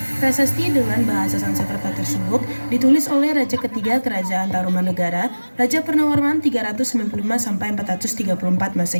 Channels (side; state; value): both; inverted; correlation -1.00